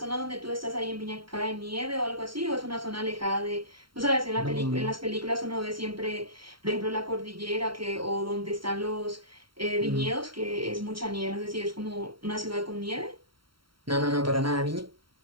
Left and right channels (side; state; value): left; late; 0.73 ms